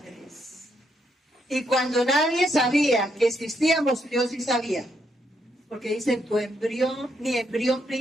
Y cuando nadie sabía que existíamos, Dios sí sabía. Porque dice, tu embrión, mi embrión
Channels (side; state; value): both; normal; correlation 0.77